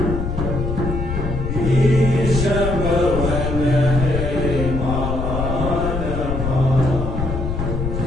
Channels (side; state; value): left; noise; rumble, 2 dB below the sound